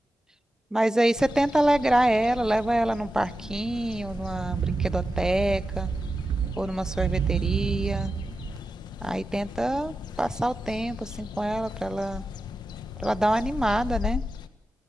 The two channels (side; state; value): both; normal; correlation 0.91